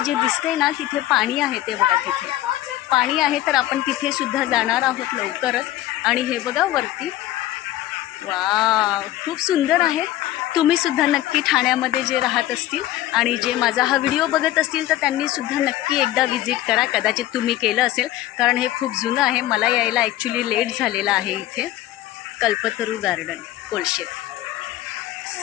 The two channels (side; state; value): right; quieter; 14.7 dB